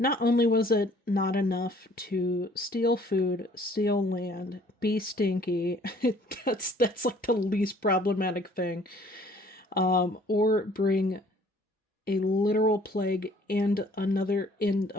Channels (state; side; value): normal; both; correlation 0.57